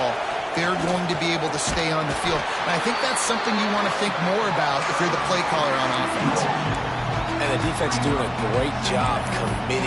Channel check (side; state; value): both; identical; correlation 1.00